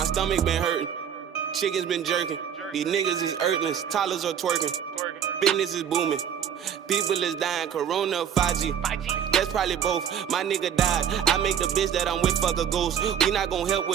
stomach been hurting. Chickens been jerking. These niggas is earthlings. Toddlers are twerking. Business is booming. People is dying. Corona, 5G. That's probably both. My nigga died. I make the bitch that I'm with fuck a ghost. We not gon' help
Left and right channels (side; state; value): left; quieter; 8.7 dB